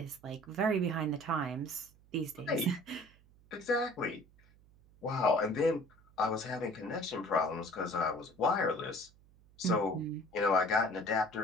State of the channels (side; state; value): right; noise; hum, 28 dB below the sound